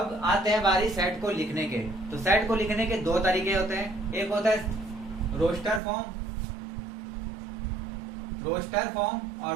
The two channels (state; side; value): drops out; left; at 5.8 s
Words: आते हैं बारी सेट को लिखने के। तो सेट को लिखने के दो तरीके होते हैं। एक होता है रोस्टर फॉर्म